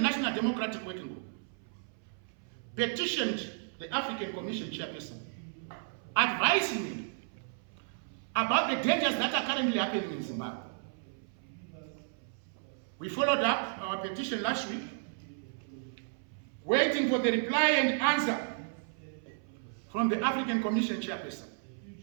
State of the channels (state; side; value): silent; left; 56 dB below the other